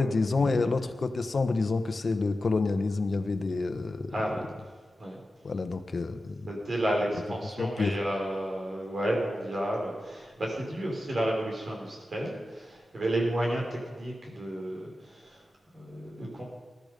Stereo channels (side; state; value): both; normal; correlation 0.92